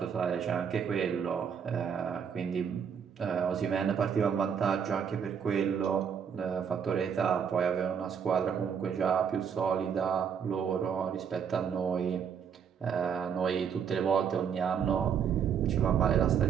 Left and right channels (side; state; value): left; quieter; 7.3 dB